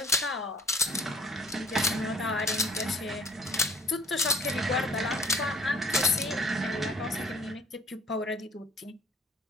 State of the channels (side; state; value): both; normal; correlation 0.54